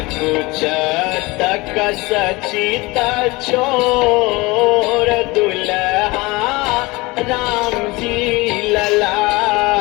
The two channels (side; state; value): right; quieter; 22.9 dB